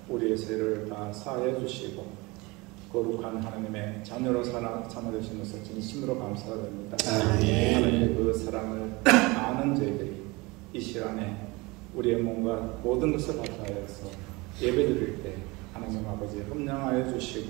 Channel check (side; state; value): left; quieter; 24.4 dB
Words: 우리의 죄를 다 사하여 주시고 거룩한 하나님의 자녀로 삼아주신 것을 진심으로 감사드립니다. 하나님의 그 사랑을 아는 저희들이 이 시간에 우리의 몸과 모든 것을 바탕하여서 예배드릴 때 하나님 아버지 흠량하여